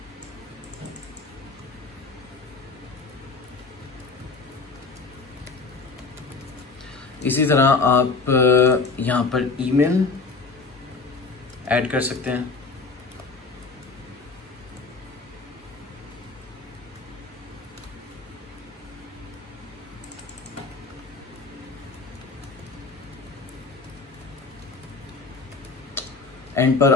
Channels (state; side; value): quieter; right; 4.3 dB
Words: इसी तरह आप यहाँ पर ईमेल ऐड कर सकते हैं। एंड पर